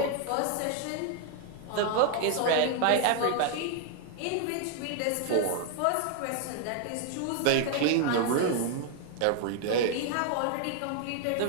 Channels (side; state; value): both; different; correlation 0.00